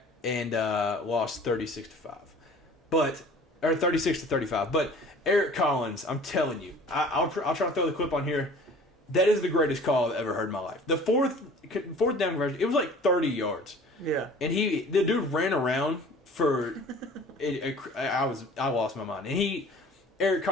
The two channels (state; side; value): normal; both; correlation 0.46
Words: and lost 36-5, or 36-35. But Eric Collins, I'm telling you, I'll try to throw the clip on here. That is the greatest call I've ever heard in my life. The fourth down conversion, it was like 30 yards. Yeah. And the dude ran around for I lost my mind. And Eric